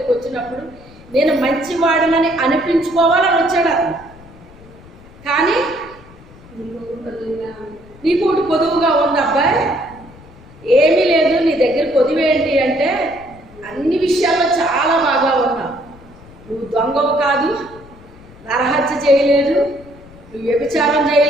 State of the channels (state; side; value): noise; left; rumble, 22 dB below the sound